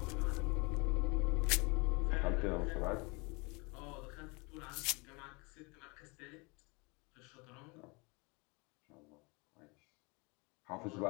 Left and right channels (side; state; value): right; quieter; 28.8 dB